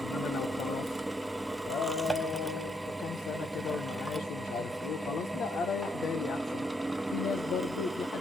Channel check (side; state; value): both; normal; correlation 0.76